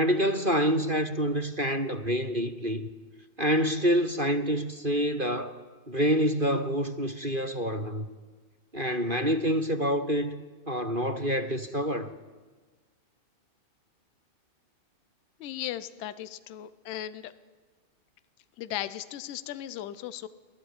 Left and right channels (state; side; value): late; left; 2.5 ms